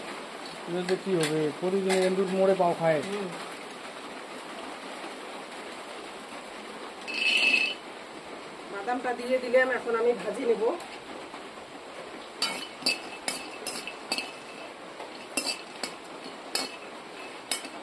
কি হবে? প্রতিদিন এন্দুর মোড়ে পাও খায়। বাদামটা দিয়ে দিলাম, এখন আমি ভাজি নেব।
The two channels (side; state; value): both; identical; correlation 1.00